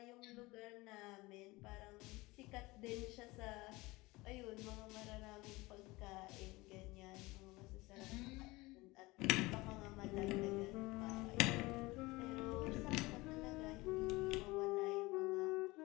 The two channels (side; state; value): right; quieter; 21.7 dB